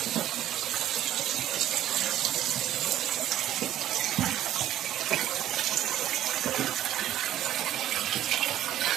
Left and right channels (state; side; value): quieter; left; 12.4 dB